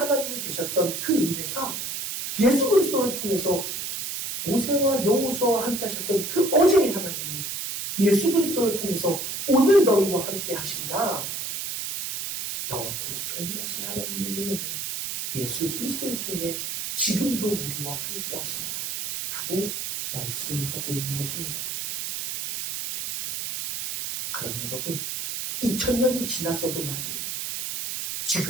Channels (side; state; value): right; noise; hiss, 4 dB below the sound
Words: 되셨던 그 은혜가 예수 그리스도를 통해서 모세와 여호수아와 함께 하셨던 그 어제의 하나님이 예수 그리스도를 통해서 오늘 너희와 함께 하신다. 영원토록 동일하신 하나님의 은혜는 예수 그리스도를 통해 지금도 우리와 함께 하신다. 라고 말씀하고 있는 것입니다. 그럼 여러분, 2000년이 지났어도 말이에요.